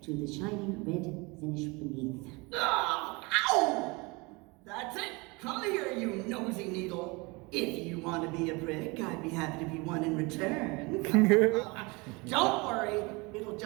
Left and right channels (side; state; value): left; quieter; 26.6 dB